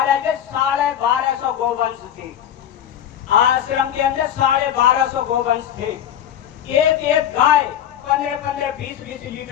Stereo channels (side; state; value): right; quieter; 10.2 dB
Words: के 1250 गोवंश थे आश्रम के अंदर, 1250 गोवंश थे। एक गाय 15-15, 20-20